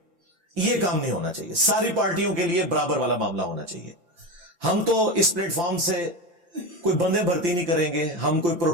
یہ کام نہیں ہونا چاہیے. ساری پارٹیوں کے لیے برابر والا معاملہ ہونا چاہیے. ہم تو اس پلیٹ فارم سے کوئی بندے بھرتی نہیں کریں گے، ہم کوئی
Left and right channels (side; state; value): left; late; 5.8 ms